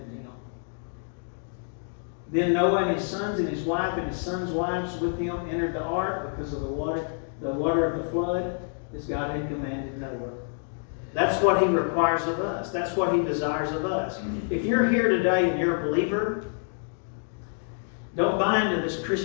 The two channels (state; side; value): silent; right; 60 dB below the other